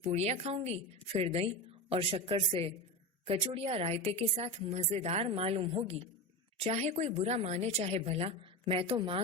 पूड़ियाँ खाऊंगी, फिर दही और शक्कर से कचौड़ियाँ रायते के साथ मजेदार मालूम होगी। चाहे कोई बुरा माने चाहे भला, मैं तो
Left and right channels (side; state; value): both; normal; correlation 0.21